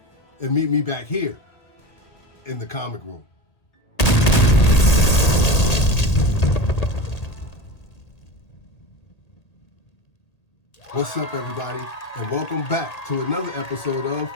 and meet me back here in the comic room. What's up, everybody, and welcome back to another episode of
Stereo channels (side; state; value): right; late; 1.8 ms